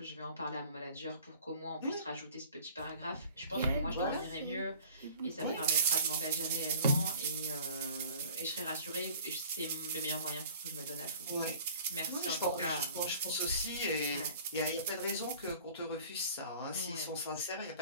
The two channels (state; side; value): inverted; both; correlation -0.47